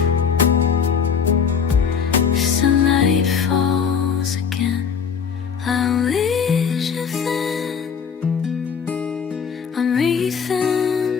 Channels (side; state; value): right; quieter; 6.7 dB